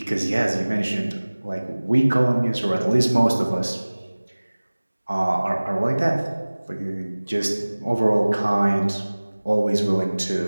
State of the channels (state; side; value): inverted; both; correlation -1.00